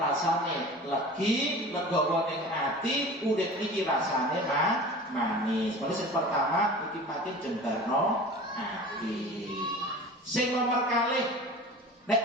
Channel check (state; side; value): normal; both; correlation 0.38